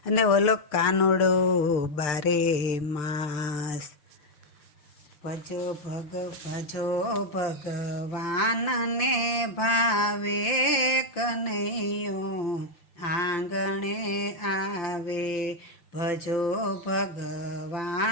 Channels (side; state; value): right; late; 6.7 ms